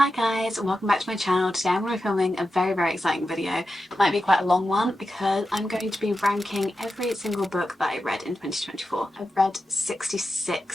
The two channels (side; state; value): both; normal; correlation 0.91